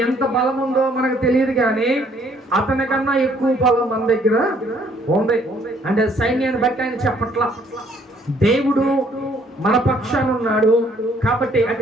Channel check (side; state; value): both; normal; correlation 0.63